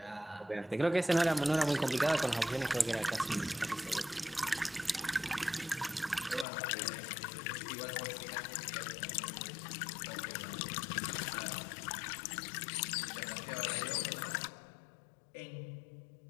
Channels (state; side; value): drops out; right; at 6.5 s